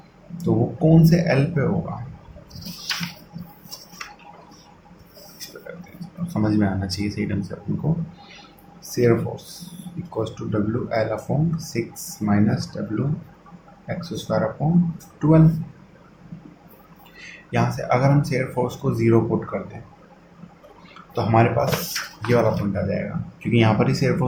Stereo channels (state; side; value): identical; both; correlation 1.00